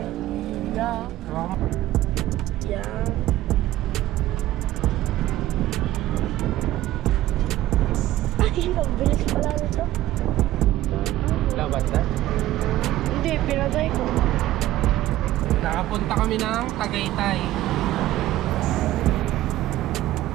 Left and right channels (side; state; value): left; quieter; 14.9 dB